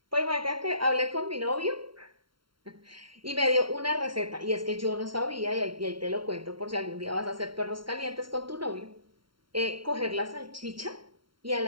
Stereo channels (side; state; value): left; late; 0.73 ms